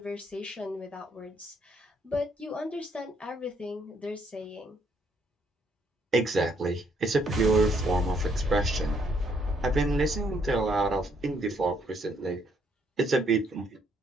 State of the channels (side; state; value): both; normal; correlation 0.70